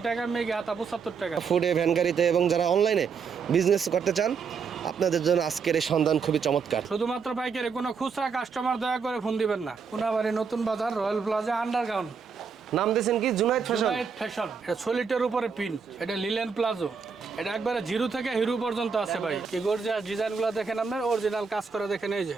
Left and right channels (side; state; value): left; quieter; 5.8 dB